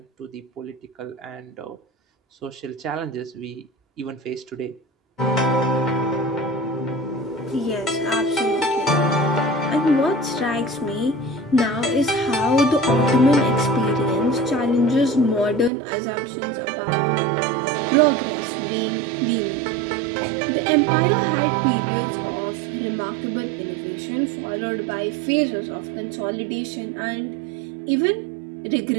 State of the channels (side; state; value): left; drops out; at 15.7 s